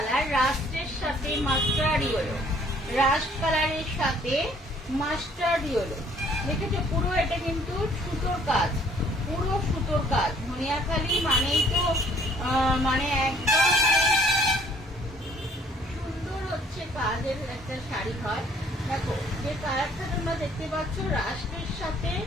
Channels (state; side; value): normal; both; correlation 0.59